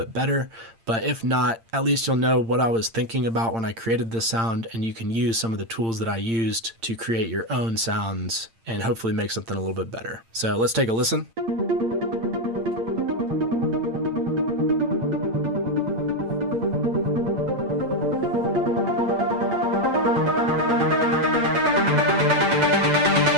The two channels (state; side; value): late; left; 8.8 ms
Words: better, but if not, at least you'll know what I was thinking about when I created this sound, and you can use some of the tools that I used to create your own sounds and hopefully make something a little bit better. So let's take a listen.